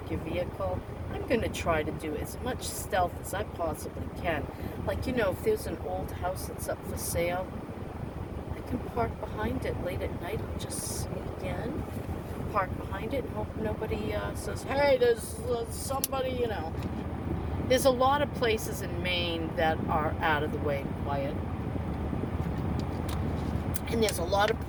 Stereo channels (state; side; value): identical; both; correlation 1.00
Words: your vehicle. I'm going to try to do as much stealth as I possibly can. Like, if there's an old house that's up for sale, I can park behind it late at night. I'll just sneak in, park behind it, and hope nobody says, hey, there's somebody, There's a lot of places in Maine that are out of the way and quiet. And there's a lot of